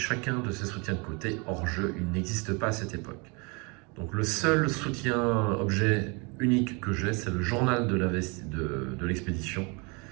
de ces soutiens de côté, hors jeu, il n'existe pas à cette époque. Donc le seul soutien objet unique que j'ai, c'est le journal de l'expédition,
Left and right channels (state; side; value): quieter; left; 30.6 dB